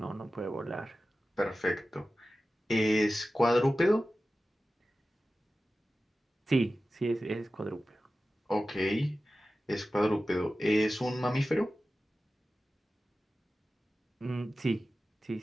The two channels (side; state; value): both; normal; correlation 0.95